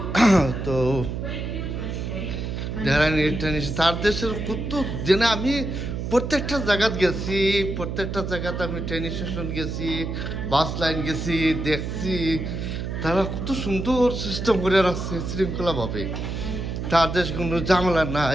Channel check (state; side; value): noise; right; hum, 4 dB below the sound